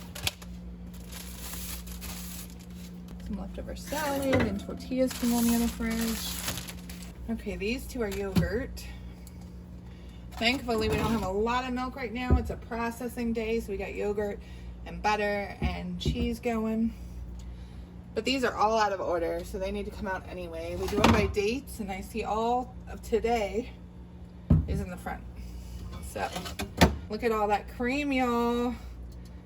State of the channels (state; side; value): identical; both; correlation 1.00